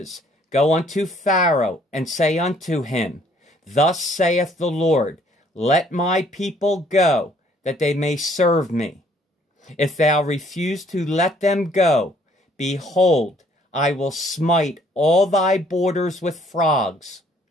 Go unto Pharaoh, and say unto him, Thus saith the Lord, Let my people go, that they may serve me. If thou refuse to let them go, behold, I will smite all thy borders with frogs.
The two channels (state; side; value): normal; both; correlation 0.62